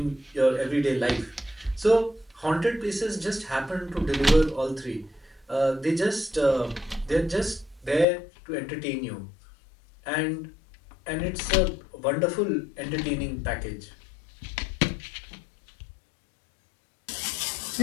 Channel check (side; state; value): right; drops out; at 8.1 s